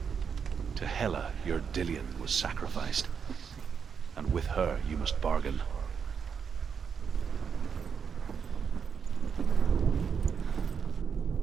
To Hela, your Dillion was sacrificed, and with her you must bargain.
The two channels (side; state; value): left; quieter; 6.7 dB